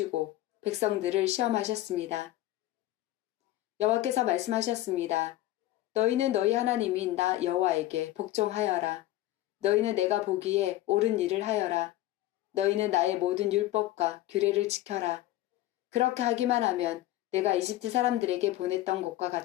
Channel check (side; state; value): right; quieter; 15.4 dB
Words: 백성들을 시험하셨습니다. 여호와께서 말씀하셨습니다. 너희는 너희 하나님인 나 여호와에게 복종하여라. 너희는 내가 보기에 옳은 일을 하여라. 너희는 나의 모든 율법과 규례를 지켜라. 그렇게 하기만 하면 내가 이집트 사람들에게 보냈던 것과